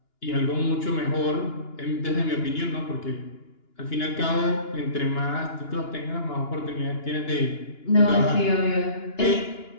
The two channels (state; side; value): late; right; 2.9 ms